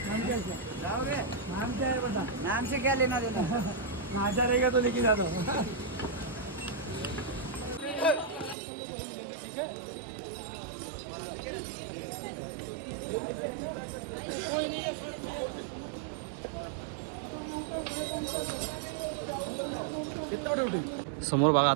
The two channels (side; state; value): left; drops out; at 8.6 s